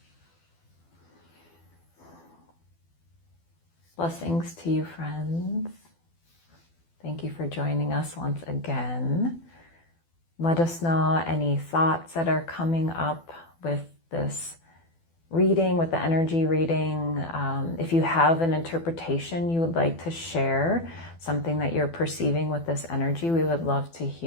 Blessings to you, friends. Thank you for joining us once again. Let us know any thoughts that are coming up with this reading, with the energy reading. If you have an interpretation you would like to share, something that you're perceiving with this energy, we would love to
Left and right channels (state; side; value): late; right; 12 ms